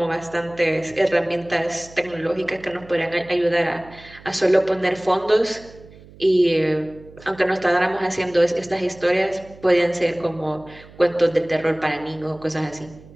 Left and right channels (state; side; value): noise; right; hum, 22 dB below the sound